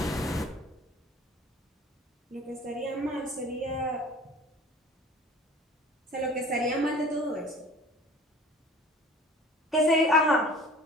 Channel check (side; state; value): both; normal; correlation 0.45